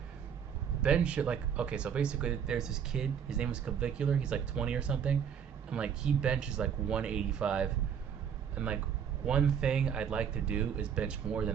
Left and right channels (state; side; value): quieter; left; 7.9 dB